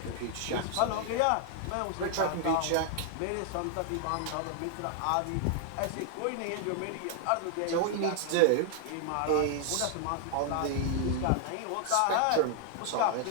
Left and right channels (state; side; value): different; both; correlation 0.00